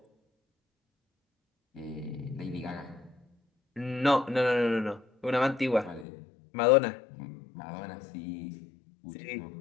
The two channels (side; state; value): right; drops out; at 6.1 s